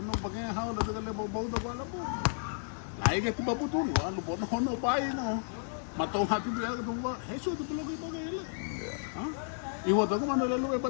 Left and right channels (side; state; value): right; silent; digital silence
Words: pakai habu nanti kalau bau tu bala bu. Lai ke tiba putu ni, anu bono hono pai no. Matau hati biar tu buka heso tu perlu kita gila. Iwo tu kan mana lelu